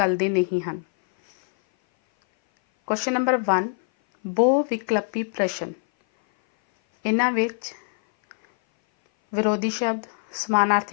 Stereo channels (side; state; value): right; silent; 58 dB below the other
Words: नहीं हैं। क्वेश्चन नंबर 1 बहुविकल्पी प्रश्न। इन्हां विच विरोधी शब्द,